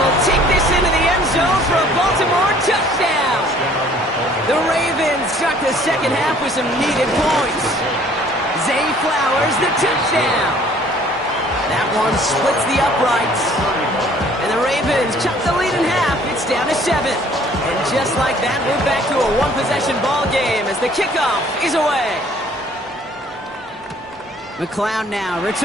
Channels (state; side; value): normal; both; correlation 0.56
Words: take this into the end zone for a Baltimore touchdown. The Ravens start the second half with some needed points. Zay Flowers, the touchdown. That one splits the uprights. And the Ravens chop the lead in half. It's down to 7. And just like that, we're back to a one-possession ball game as the kickoff is away. McLeod now